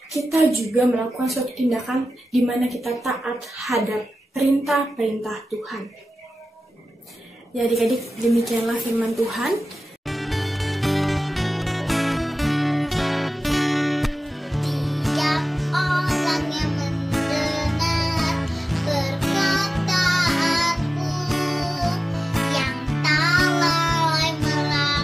kita juga melakukan suatu tindakan di mana kita taat hadap perintah-perintah Tuhan. Ya adik-adik, demikianlah firman Tuhan. Tiap orang yang mendengar perkataanku, yang tak lalai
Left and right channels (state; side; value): normal; both; correlation 0.95